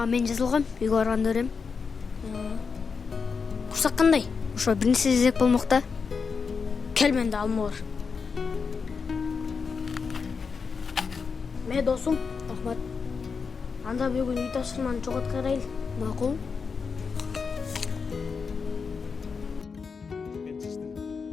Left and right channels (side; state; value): right; quieter; 5.4 dB